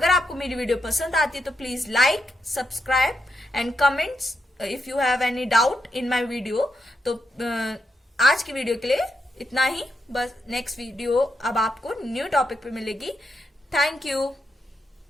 आपको मेरी वीडियो पसंद आती है तो please like, subscribe and comments if you have any doubt in my video. तो आज की वीडियो के लिए इतना ही, बस नेक्स्ट वीडियो अब आपको न्यू टॉपिक पे मिलेगी। Thank you.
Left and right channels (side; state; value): both; normal; correlation 0.83